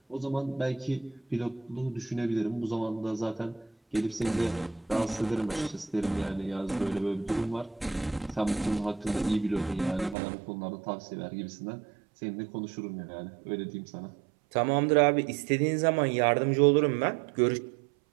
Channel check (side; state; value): left; drops out; at 10.2 s